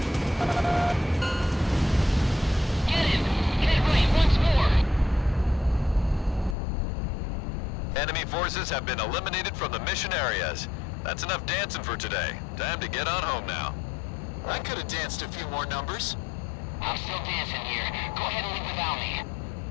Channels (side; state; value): right; drops out; at 6.6 s